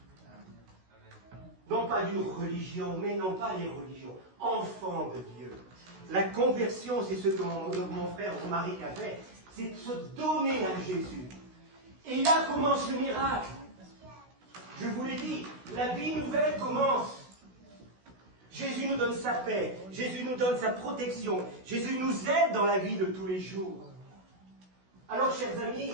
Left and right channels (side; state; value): left; late; 16 ms